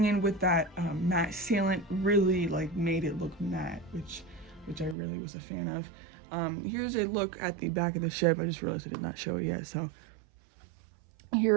in with that matte sealant really like made it look matte, which I really was a fan of. Here's a look at the back of the ship. I just realized I did not show it yet, so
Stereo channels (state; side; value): drops out; left; at 5.0 s